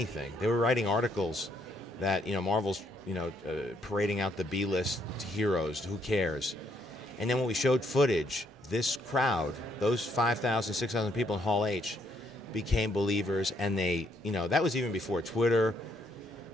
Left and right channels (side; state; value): both; normal; correlation 0.72